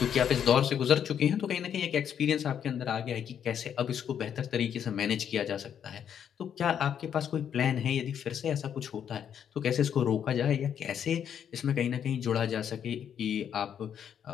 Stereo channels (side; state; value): right; quieter; 8.7 dB